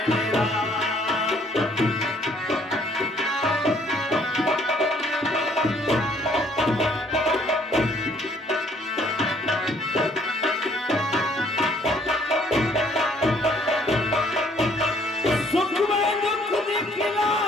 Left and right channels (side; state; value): both; normal; correlation 0.62